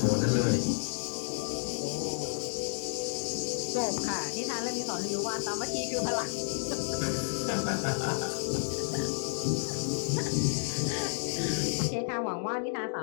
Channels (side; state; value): right; silent; digital silence